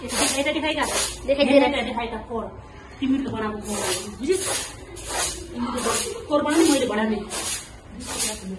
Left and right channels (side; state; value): both; identical; correlation 1.00